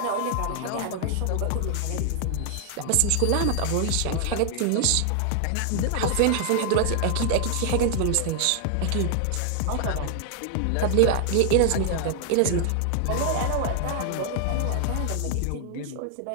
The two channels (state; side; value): different; both; correlation 0.00